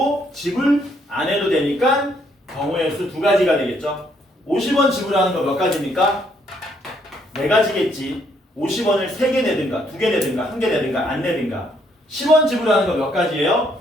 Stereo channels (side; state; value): both; normal; correlation 0.70